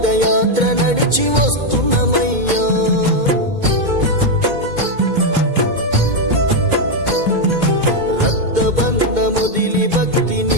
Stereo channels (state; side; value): late; left; 2.2 ms